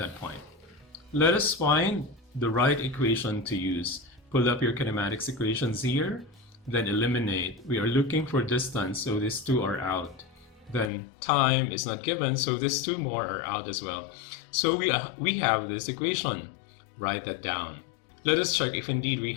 point. Let us find the right equation to use. Pull up your kinematics equations here, then eliminate. We are looking for distance, so these two are out. Then time is not given, so these two more are out as well. So we have this equation. Write that down. Let us check if indeed we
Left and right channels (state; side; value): drops out; right; at 10.9 s